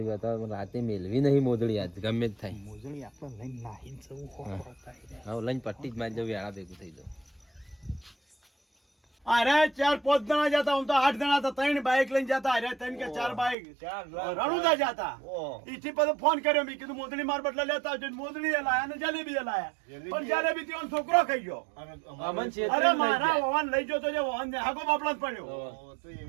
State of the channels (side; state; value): left; drops out; at 13.6 s